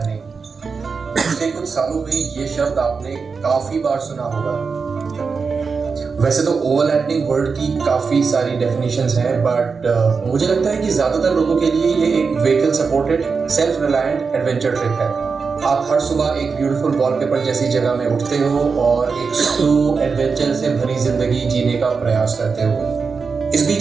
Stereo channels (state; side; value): quieter; left; 5.1 dB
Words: पिछले कुछ सालों में ये शब्द आपने काफी बार सुना होगा। वैसे तो ओवरलैंडिंग वर्ड की काफी सारी डेफिनेशंस हैं, बट मुझे लगता है कि ज्यादातर लोगों के लिए ये एक vehicle supported self reliant adventure trip है। आप हर सुबह एक ब्यूटीफुल वॉलपेपर जैसी जगह में उठते हो और एक स्लो एडवेंचर से भरी जिंदगी जीने का प्रयास करते हो। इस